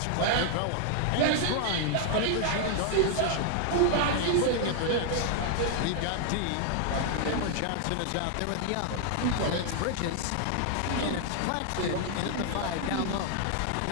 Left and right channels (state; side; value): different; both; correlation 0.00